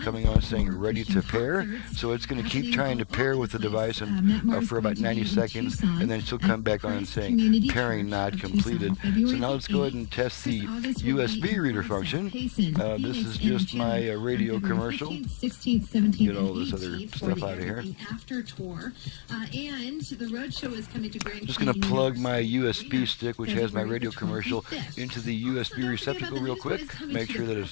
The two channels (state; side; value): silent; right; digital silence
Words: coming on saying ready to pair. So it's going to keep trying to pair with the device and, for about 90 seconds, and then she'll come back on and saying pairing not completed. So now let's go ahead and test the USB reader function. This is just my radio commercial. Get all this other stuff out of here. I'm just going to plug my USB stick, which has my radio commercial, into the USB receptacle real quick. Make sure that it